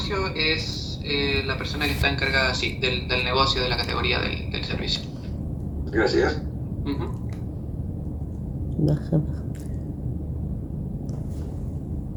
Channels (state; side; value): identical; both; correlation 1.00